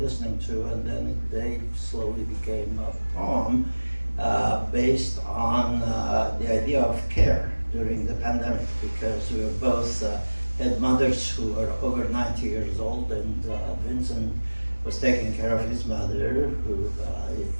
to, and then they slowly became a poem based on the idea of care during the pandemic, because we were both had mothers who were over 90 years old, and Vincent was taking care of his mother, who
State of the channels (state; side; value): inverted; both; correlation -1.00